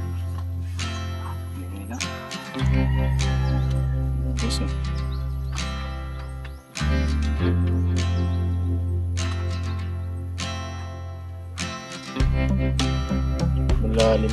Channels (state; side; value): identical; both; correlation 1.00